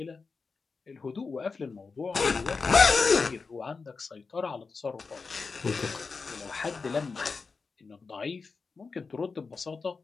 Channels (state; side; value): quieter; right; 4.6 dB